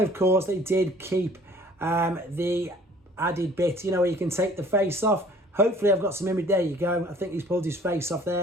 course, they did keep the added bit, you know, where you can take the face off. Hopefully I've got some image. There you go. I think he's pulled his face off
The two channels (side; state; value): both; normal; correlation 0.53